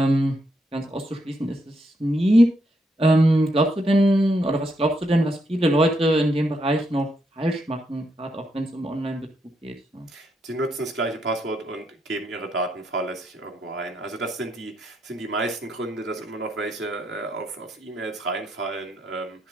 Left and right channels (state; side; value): normal; both; correlation 0.79